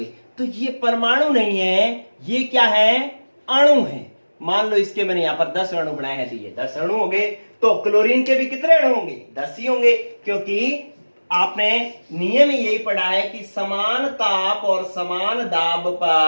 तो ये परमाणु नहीं है, ये क्या है, अणु है। मान लो इसके मैंने यहां पर 10 अणु बनाए हैं, तो ये 10 अणु हो गए। तो क्लोरीन के भी कितने अणु होंगे, 10 ही होंगे, क्योंकि आपने नियम में यही पढ़ा है कि समान ताप और समान दाब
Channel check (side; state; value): both; inverted; correlation -1.00